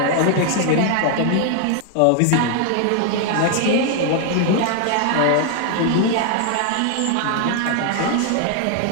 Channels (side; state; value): both; different; correlation 0.00